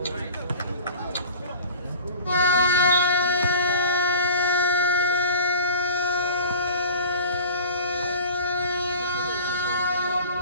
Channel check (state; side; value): inverted; both; correlation -0.39